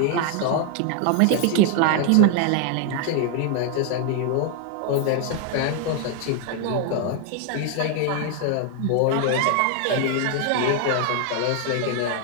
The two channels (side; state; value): both; different; correlation 0.00